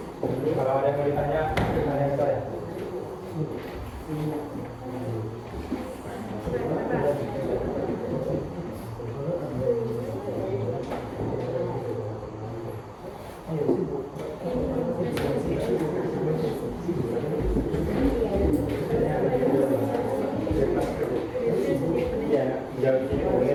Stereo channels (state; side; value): identical; both; correlation 1.00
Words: Kalau ada yang mau ditanya, tanya ke saya. Ya, jauh sini boleh.